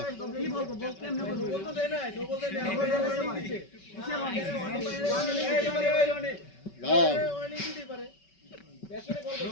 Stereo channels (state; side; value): late; right; 5.3 ms